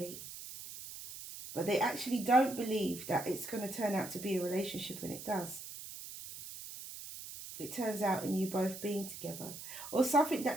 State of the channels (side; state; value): right; noise; hiss, 11 dB below the sound